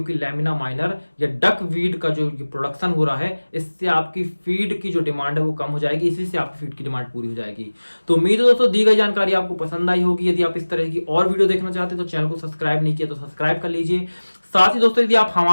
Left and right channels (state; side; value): inverted; both; correlation -1.00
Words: लैमिना माइनर या डक वीड का जो प्रोडक्शन हो रहा है, इससे आपकी फीड की जो डिमांड है वो कम हो जाएगी, इसी से आपकी फीड की डिमांड पूरी हो जाएगी। तो उम्मीद है दोस्तों दी गई जानकारी आपको पसंद आई होगी। यदि आप इस तरह की और वीडियो देखना चाहते हैं तो चैनल को सब्सक्राइब नहीं किया तो सब्सक्राइब कर लीजिए। साथ ही दोस्तों यदि आप